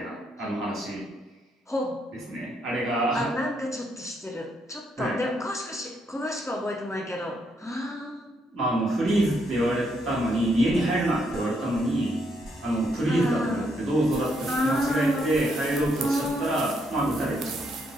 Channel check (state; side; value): normal; both; correlation 0.75